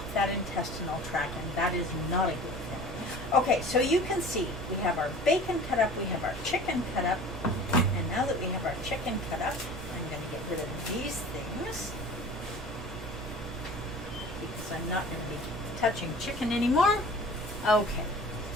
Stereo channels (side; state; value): right; noise; rumble, 13 dB below the sound